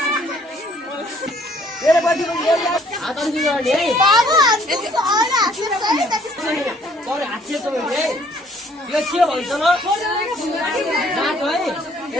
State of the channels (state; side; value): normal; both; correlation 0.61